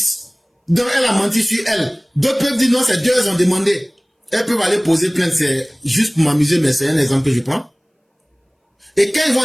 Donc elle a menti sur elle. D'autres peuvent dire non, c'est 2 elles ont demandé. Elles peuvent aller poser plainte, c'est juste pour m'amuser, mais c'est un exemple que je prends. Et quand ils vont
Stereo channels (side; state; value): both; identical; correlation 1.00